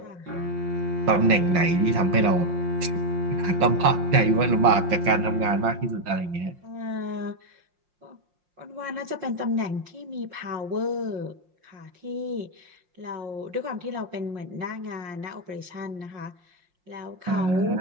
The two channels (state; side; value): late; left; 5.6 ms